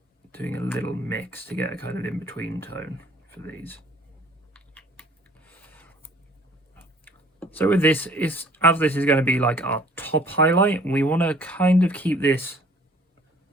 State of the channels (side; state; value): both; normal; correlation 0.55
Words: doing a little mix to get a kind of in-between tone for these. So with this, as this is going to be like our top highlight, we want to kind of keep this